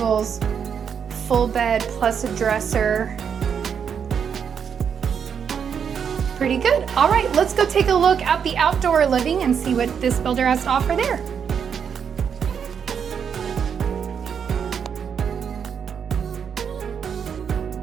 full bed plus a dresser. Pretty good. All right, let's go take a look at the outdoor living and see what this builder has to offer there.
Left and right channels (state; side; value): quieter; left; 7.3 dB